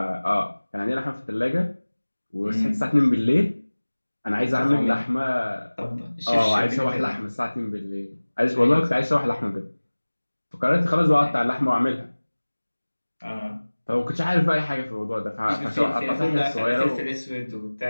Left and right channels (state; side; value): inverted; both; correlation -1.00